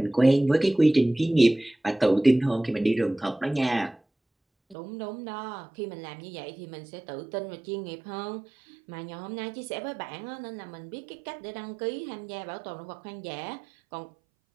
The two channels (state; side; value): drops out; left; at 4.8 s